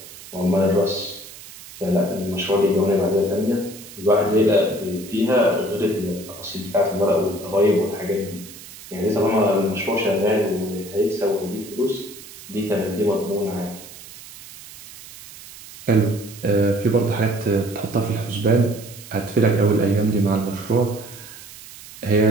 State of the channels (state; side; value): noise; right; hiss, 17 dB below the sound